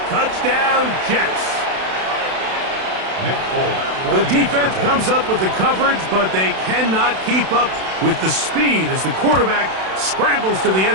Touchdown, Jets. The defense comes up with the coverage, but they cannot keep up with the speed as the quarterback scrambles to the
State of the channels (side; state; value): left; late; 32 ms